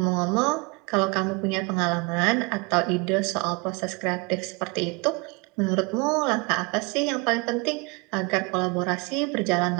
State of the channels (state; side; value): quieter; left; 27.3 dB